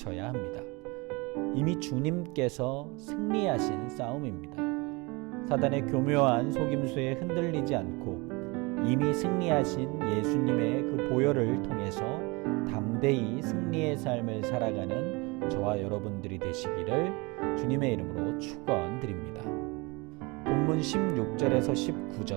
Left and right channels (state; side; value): quieter; left; 26.5 dB